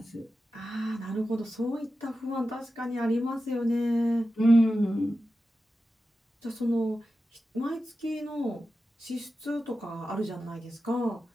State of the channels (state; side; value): normal; both; correlation 0.92